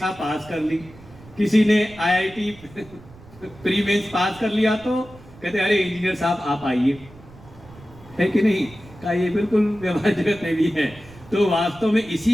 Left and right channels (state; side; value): noise; right; rumble, 21 dB below the sound